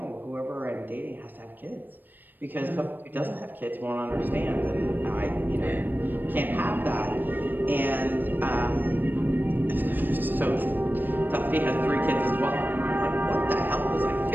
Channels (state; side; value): late; left; 0.092 ms